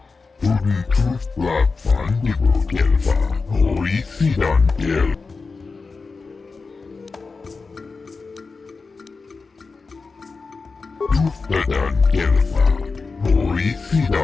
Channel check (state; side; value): quieter; right; 4.3 dB